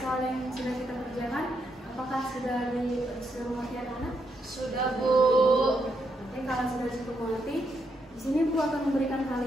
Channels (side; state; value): both; normal; correlation 0.79